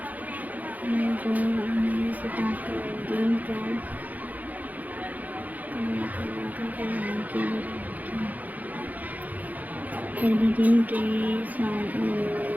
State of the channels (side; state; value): left; late; 0.080 ms